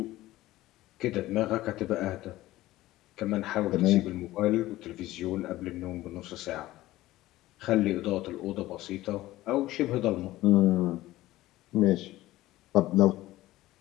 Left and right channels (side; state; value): right; quieter; 16.6 dB